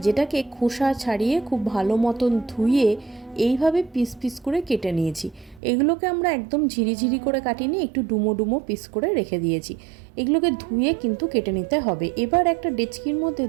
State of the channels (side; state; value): left; drops out; at 5.6 s